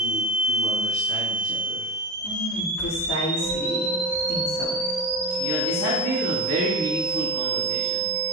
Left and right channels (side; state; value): both; normal; correlation 0.22